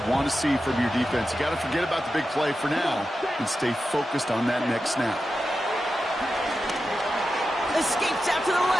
want to see from your defense. You got to forget about the big play for now and stay focused on that next snap. Escapes out to the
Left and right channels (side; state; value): both; normal; correlation 0.91